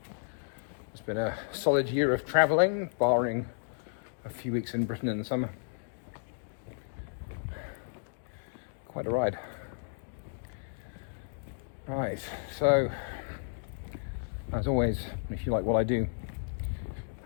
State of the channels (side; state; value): right; silent; digital silence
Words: It's been a solid year of travelling, barring a few weeks in Britain in the summer. Quite a ride. Right, so as always, if you like what I do